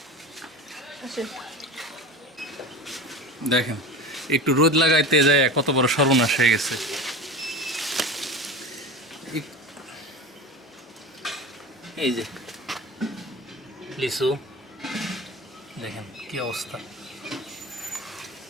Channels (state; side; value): normal; both; correlation 0.29